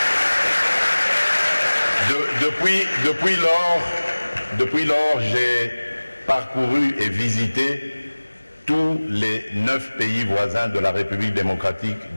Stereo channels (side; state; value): both; inverted; correlation -1.00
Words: depuis lors, j'ai parcouru et visité tous les 9 pays voisins de la République démocratique